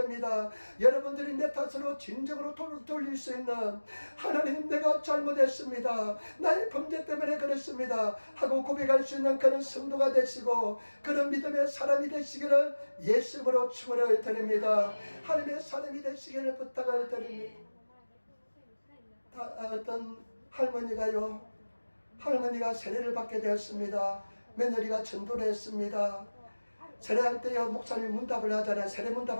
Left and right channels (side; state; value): both; inverted; correlation -1.00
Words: 여러분들이 내 탓으로 진정으로 돌릴 수 있는, 하나님 내가 잘못했습니다, 나의 범죄 때문에 그렇습니다 하고 고백할 수 있는 그런 성도가 되시고 그런 믿음의 사람이 되시기를 예수님으로 축원을 드립니다. 하나님의 사람이 되시기를 부탁을 드립니다. 어떤 할머니가 세례를 받게 되었습니다. 며느리가 전도를 했습니다. 세례할 때요, 목사님이 문답을 하잖아요. 세례